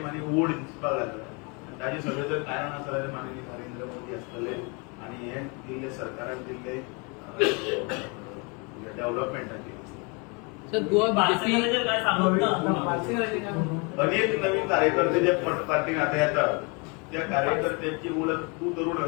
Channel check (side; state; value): right; quieter; 31.5 dB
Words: आनी ओड दिसपाक लागला. ताजें सगळें जर कारण आसा जाल्यार माननीय नरेंद्र मोदी आसतले आनी हे दिल्ले सरकारान दिल्ले डेव्हलपमेंटाचेर. सर गोवा बीजेपी काय सांगत ना अनेक नवीन कार्यकर्ते जे पार्टीन आता येतात त्या कार्यकर्त्यांची ओळख तू तरुण